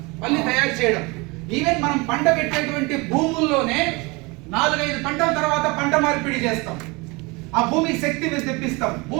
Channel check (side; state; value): left; quieter; 26.0 dB